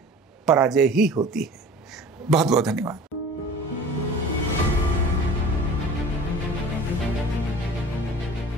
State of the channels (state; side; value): normal; both; correlation 0.42